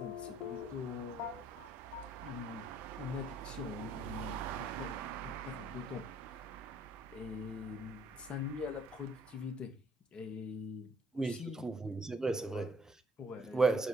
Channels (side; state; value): both; normal; correlation 0.64